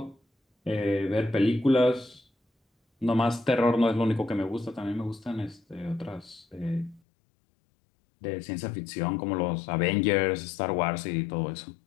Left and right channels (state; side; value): drops out; right; at 7.0 s